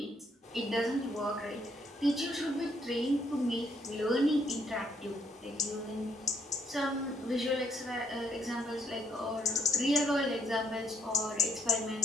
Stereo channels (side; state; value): both; normal; correlation 0.69